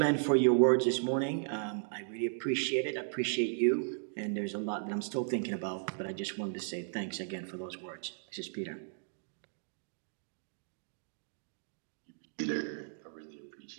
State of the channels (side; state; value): left; silent; digital silence